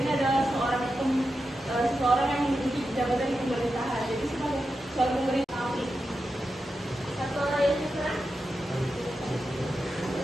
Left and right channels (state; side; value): normal; both; correlation 0.89